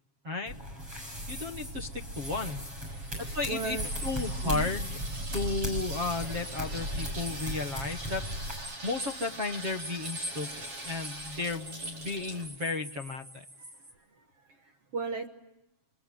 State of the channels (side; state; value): left; late; 7.3 ms